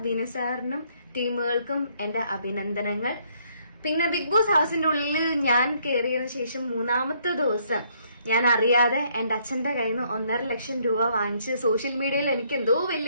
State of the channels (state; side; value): inverted; both; correlation -0.68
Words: വിനുസാറിനും ടീമുകൾക്കും എന്റെ അഭിനന്ദനങ്ങൾ. പിന്നെ ബിഗ് ബോസ് ഹൗസിന്റെ ഉള്ളിൽ ഞാൻ കയറിയതിനു ശേഷം 3-ാമത്തെ ദിവസം ഞാൻ അറിയാതെ എന്റെ അച്ഛന്റെ കയ്യിൽ നിന്ന് 1.5 ലക്ഷം രൂപ വാങ്ങിച്ച് സോഷ്യൽ മീഡിയയിൽ എനിക്ക് എന്തോ